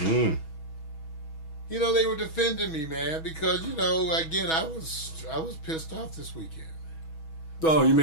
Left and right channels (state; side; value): late; right; 6.2 ms